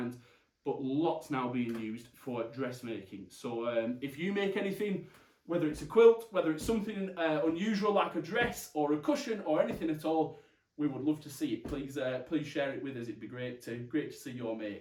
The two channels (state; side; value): identical; both; correlation 1.00